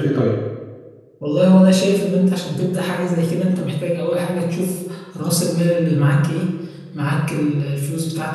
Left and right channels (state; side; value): identical; both; correlation 1.00